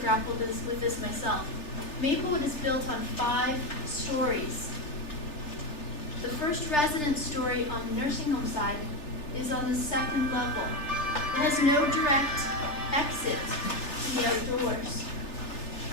with this myself. Maplewood is built on 5 stories. The first residence story on the nursing home side is on the 2nd level. It has no direct exit to the outdoors.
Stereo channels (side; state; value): right; late; 3.3 ms